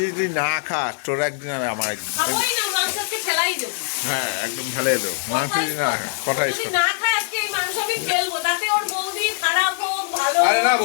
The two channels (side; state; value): right; silent; digital silence